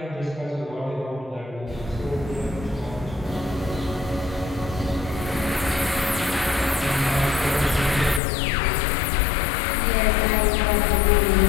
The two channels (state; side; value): drops out; right; at 8.2 s